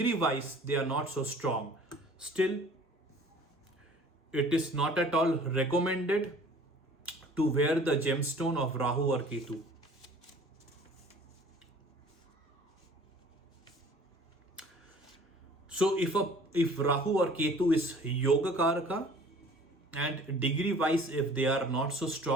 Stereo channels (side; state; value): both; normal; correlation 0.49